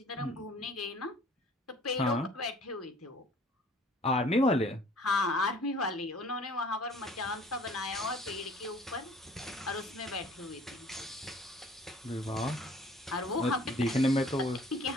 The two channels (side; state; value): both; normal; correlation 0.53